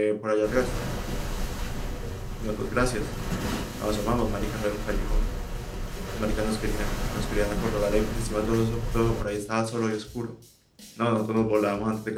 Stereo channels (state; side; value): identical; both; correlation 1.00